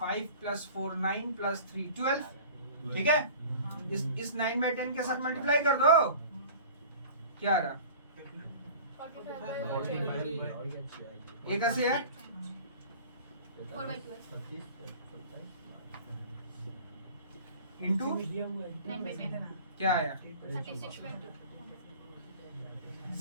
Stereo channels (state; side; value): inverted; both; correlation -0.42